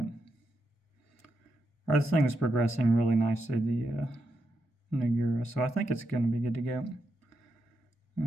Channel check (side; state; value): both; normal; correlation 0.84